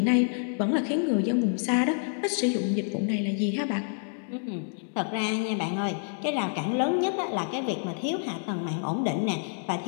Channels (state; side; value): silent; right; 59 dB below the other